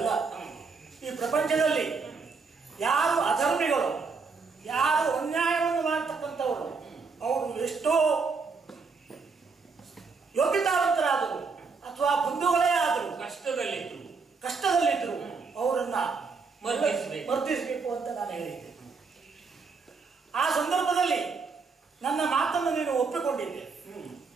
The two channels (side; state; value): left; quieter; 4.8 dB